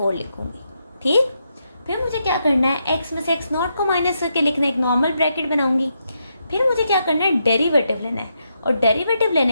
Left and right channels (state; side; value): inverted; both; correlation -0.82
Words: लिखूँगी। ठीक, फिर मुझे क्या करना है? x में से x नॉट को माइनस करके लिखना है, एक नॉर्मल ब्रैकेट बनाऊँगी। फिर मुझे क्या करना है? डेरिवेटिव लेना है, और डेरिवेटिव